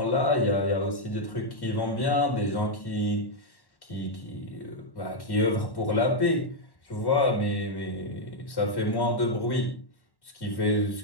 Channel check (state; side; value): late; right; 1.1 ms